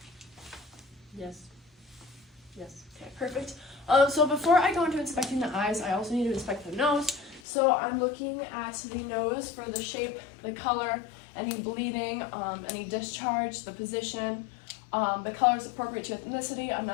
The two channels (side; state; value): right; drops out; at 7.4 s